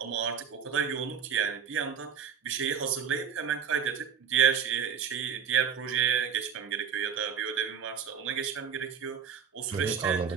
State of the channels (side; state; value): left; quieter; 7.5 dB